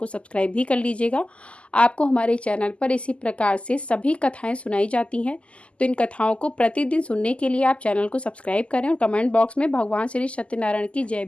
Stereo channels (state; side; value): late; right; 0.056 ms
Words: सब्सक्राइब भी कर लीजिएगा। आपको हमारे चैनल पर इसी प्रकार से सभी कथाएं सुनाई जाती हैं, तो इन कथाओं को प्रतिदिन सुनने के लिए आप चैनल को सब्सक्राइब करें और कमेंट बॉक्स में भगवान श्री सत्यनारायण की जय